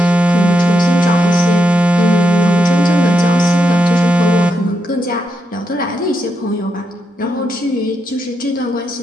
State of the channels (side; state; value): both; normal; correlation 0.83